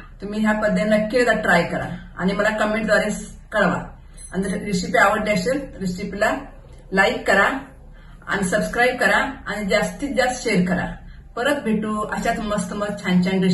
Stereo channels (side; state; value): both; identical; correlation 1.00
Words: तुम्ही ह्या पद्धतीने नक्की एकदा ट्राय करा आणि मला कमेंटद्वारे कळवा. आणि जर रेसिपी आवडली असेल रेसिपीला लाईक करा आणि सबस्क्राईब करा आणि जास्तीत जास्त शेअर करा. परत भेटू अशाच मस्त मस्त छान छान